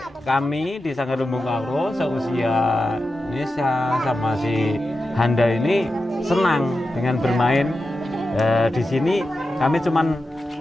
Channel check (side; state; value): both; normal; correlation 0.91